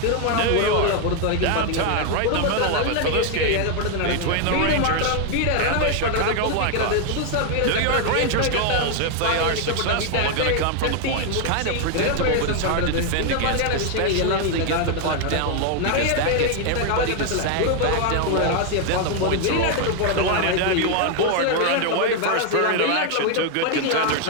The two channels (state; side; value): different; both; correlation 0.01